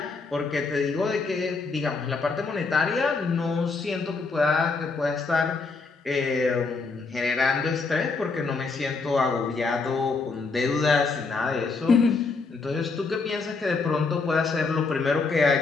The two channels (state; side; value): quieter; right; 4.2 dB